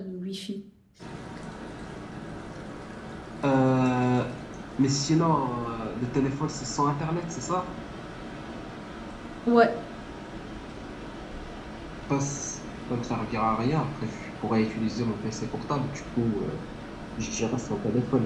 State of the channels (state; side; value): identical; both; correlation 1.00